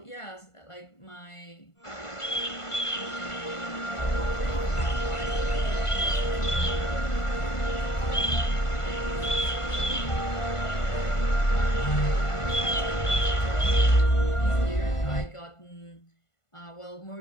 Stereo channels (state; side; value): late; right; 1.5 ms